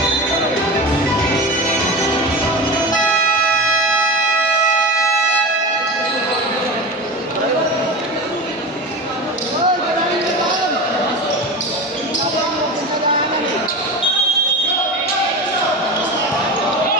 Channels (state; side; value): normal; both; correlation 0.26